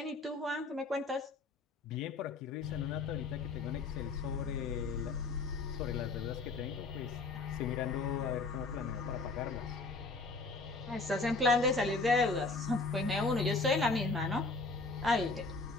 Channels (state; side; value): quieter; right; 3.7 dB